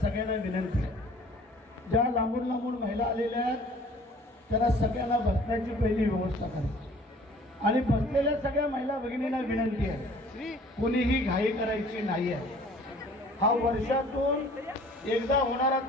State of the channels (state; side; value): normal; both; correlation 0.52